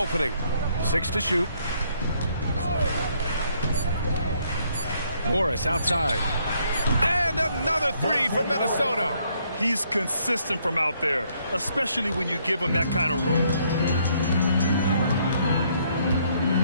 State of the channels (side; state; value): both; inverted; correlation -0.69